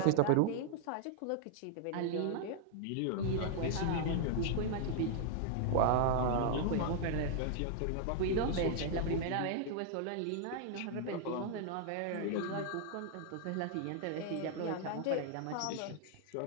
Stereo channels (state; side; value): different; both; correlation 0.00